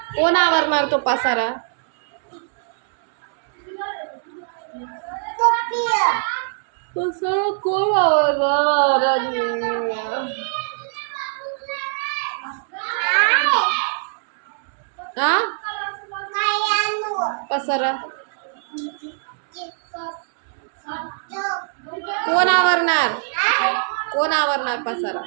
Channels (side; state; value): left; silent; digital silence